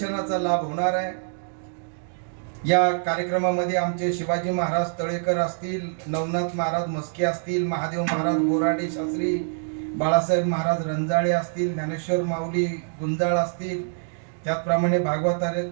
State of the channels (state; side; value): silent; left; digital silence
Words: लाभ होणार आहे. या कार्यक्रमामध्ये आमचे शिवाजी महाराज तळेकर असतील, नवनाथ महाराज मस्के असतील, महादेव महाराज बोराडे शास्त्री, बाळासाहेब महाराज रंजाळे असतील, ज्ञानेश्वर माऊली गुंजाळ असतील, त्याचप्रमाणे